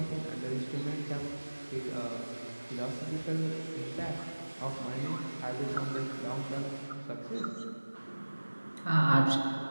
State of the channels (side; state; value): both; inverted; correlation -1.00